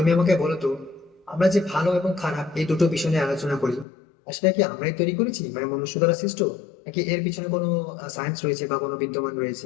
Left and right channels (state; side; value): drops out; right; at 3.9 s